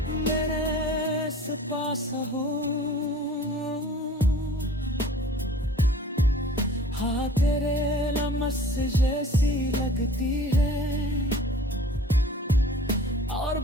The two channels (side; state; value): both; normal; correlation 0.47